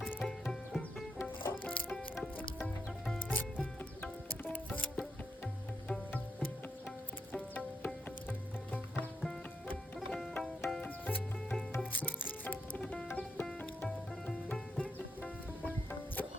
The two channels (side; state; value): both; normal; correlation 0.81